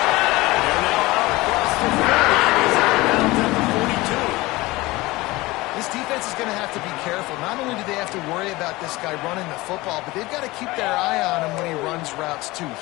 They're now out across the 40. He's out of bounds at the 42. This defense is going to have to be careful. Not only do they have to worry about this guy running the football, but they've got to keep their eye on him when he runs routes too.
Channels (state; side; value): quieter; right; 20.6 dB